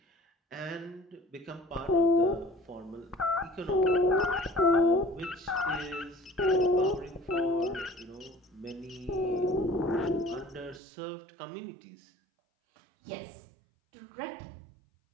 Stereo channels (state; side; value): drops out; left; at 10.8 s